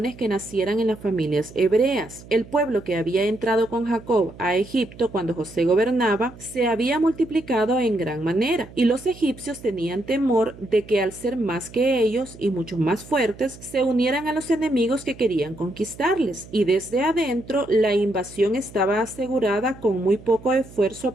que nacieran en las familias hebreas. El pueblo que había entrado con Jacob a Egipto cuando José gobernaba se había multiplicado en gran manera, y los egipcios tenían temor de que al ser más que ellos y mucho más fuertes, se unieran a los enemigos que querían conquistarles, y desde adentro la invasión estaba asegurada con muy poco esfuerzo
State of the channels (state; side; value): noise; right; hum, 19 dB below the sound